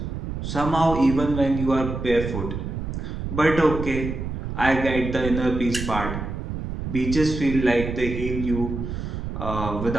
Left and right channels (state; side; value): noise; right; rumble, 5 dB below the sound